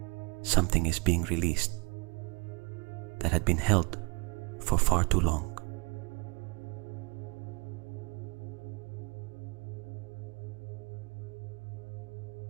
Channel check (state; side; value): quieter; left; 30.6 dB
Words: something is being released that had been held for far too long.